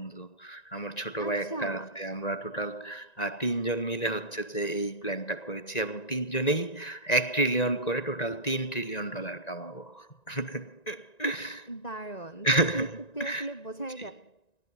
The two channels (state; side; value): late; right; 1.9 ms